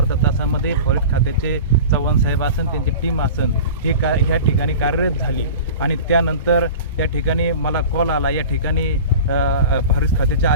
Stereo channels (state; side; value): inverted; both; correlation -0.35